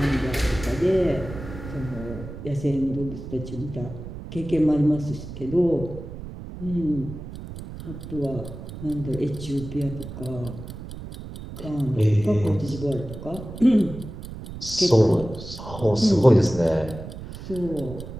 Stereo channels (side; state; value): right; noise; rumble, 11 dB below the sound